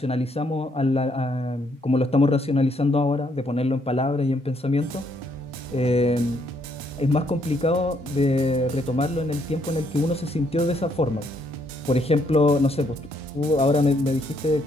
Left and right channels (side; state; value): both; normal; correlation 0.71